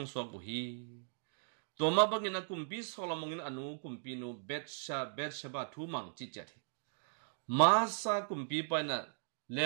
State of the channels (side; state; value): left; silent; digital silence